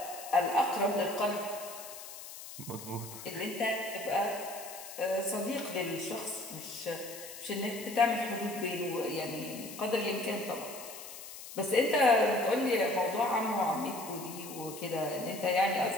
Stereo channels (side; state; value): left; noise; hiss, 12 dB below the sound